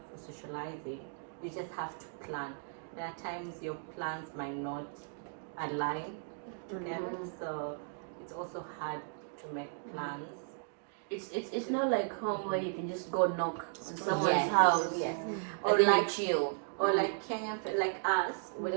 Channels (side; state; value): left; silent; digital silence